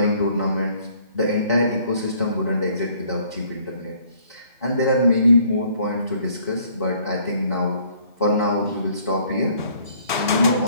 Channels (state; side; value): inverted; both; correlation -0.61